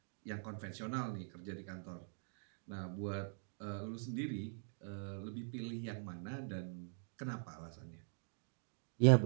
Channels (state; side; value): silent; left; digital silence